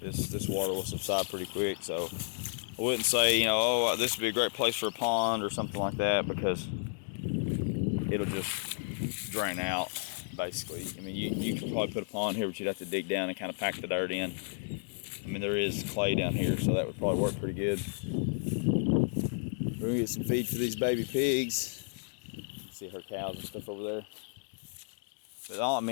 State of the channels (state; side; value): silent; right; digital silence